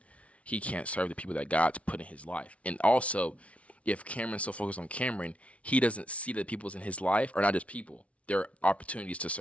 he can't serve the people that God's put in his life. And also, if Cameron's so focused on Cameron, he doesn't see that the people's in his life are not just people. They're opportunities to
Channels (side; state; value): right; late; 0.064 ms